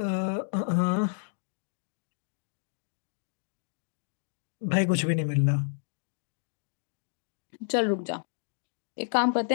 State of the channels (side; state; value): right; silent; digital silence